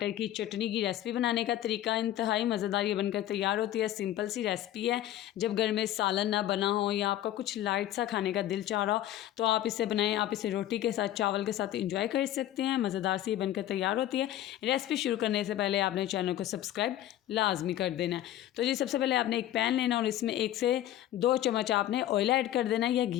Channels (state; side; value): quieter; right; 13.0 dB